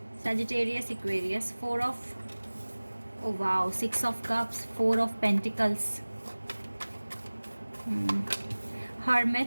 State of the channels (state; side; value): inverted; both; correlation -1.00